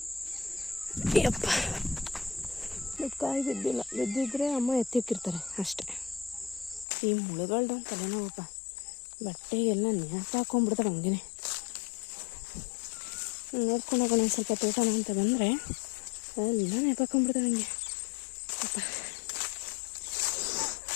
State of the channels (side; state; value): right; drops out; at 6.9 s